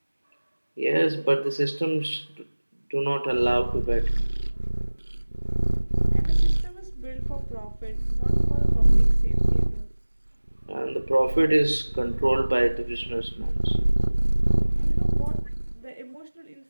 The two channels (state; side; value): inverted; both; correlation -1.00